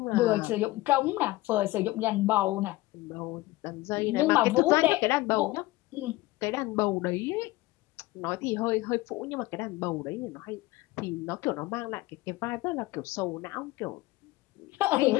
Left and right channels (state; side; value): quieter; right; 19.0 dB